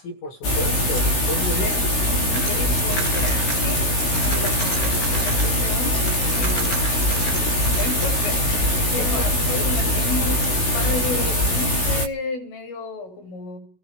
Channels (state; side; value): late; right; 16 ms